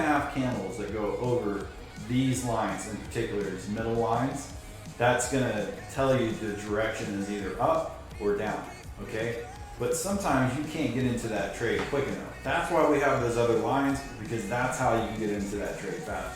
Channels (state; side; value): identical; both; correlation 1.00